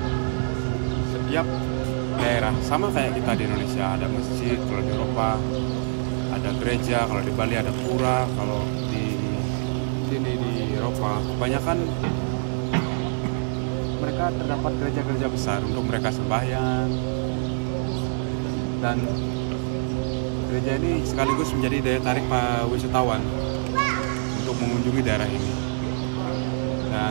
setiap daerah sama kayak kita di Indonesia, ada masjid. Kalau di Eropa ada gereja, kalau di Bali ada pura, kalau di sini di Eropa kebanyakan mereka terdapat gereja-gereja besar untuk mereka sembahyang. Dan gereja ini sekaligus menjadi daya tarik para wisatawan untuk mengunjungi daerah ini.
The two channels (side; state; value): left; silent; digital silence